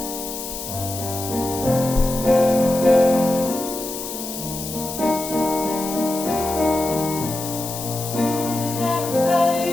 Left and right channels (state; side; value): noise; left; hiss, 8 dB below the sound